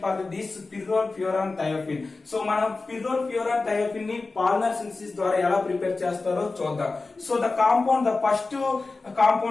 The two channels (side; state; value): right; quieter; 3.7 dB